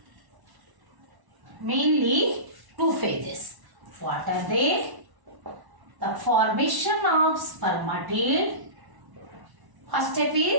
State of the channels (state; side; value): late; left; 1.1 ms